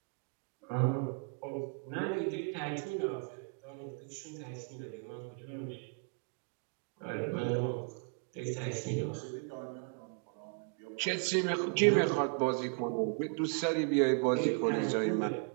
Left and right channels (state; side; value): quieter; left; 39.3 dB